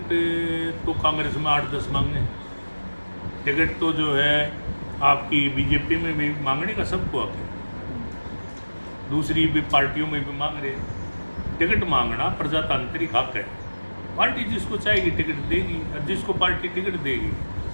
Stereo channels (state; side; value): inverted; both; correlation -1.00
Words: तो कांग्रेस में 8-10 मांगने, टिकट तो जो है आपकी बीजेपी में भी मांगने का सबको हक है, दूसरी भी पार्टियों में भी मांग रहे हैं। टिकट मांगना प्रजातांत्रिक हक है, पार्टी जिसको चाहेगी टिकट देगी, और जिसको पार्टी टिकट देगी